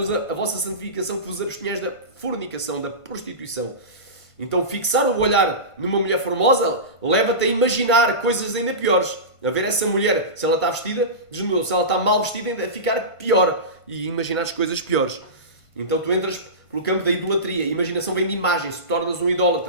de Deus, a vossa santificação, que vos abstenhais da fornicação, da prostituição. Então fixar o olhar numa mulher formosa leva-te a imaginar coisas ainda piores. A ver essa mulher, se ela está vestida, desnudou. Se ela está mal vestida, ainda ficar pior. E imaginar as coisas piores. Então tu entras pelo campo da idolatria. A imaginação vem de imagem, se tornas um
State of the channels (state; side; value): late; right; 1.5 ms